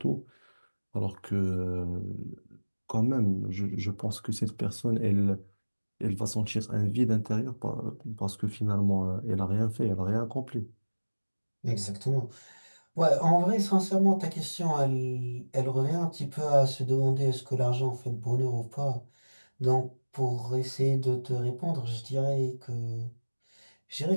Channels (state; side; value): inverted; both; correlation -1.00